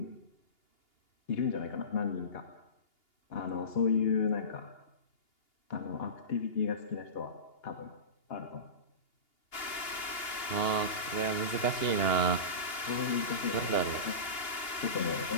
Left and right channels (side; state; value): right; late; 2.8 ms